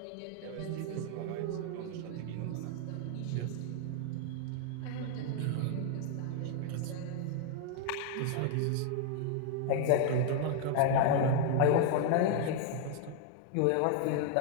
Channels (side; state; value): both; different; correlation 0.00